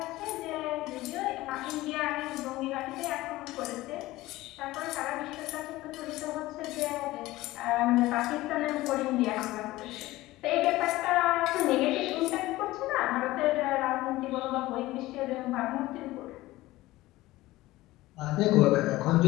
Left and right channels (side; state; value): right; quieter; 17.9 dB